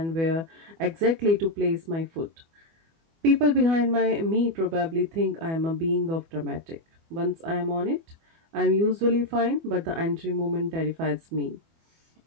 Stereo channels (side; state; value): left; late; 24 ms